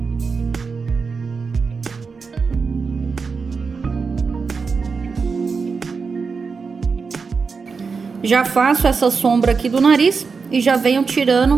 Já faço essa sombra aqui do nariz e já venho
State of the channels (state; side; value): quieter; left; 5.0 dB